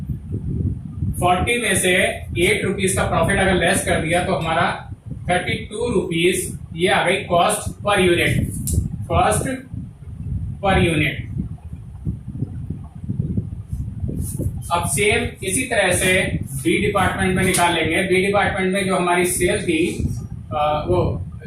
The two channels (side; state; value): both; identical; correlation 1.00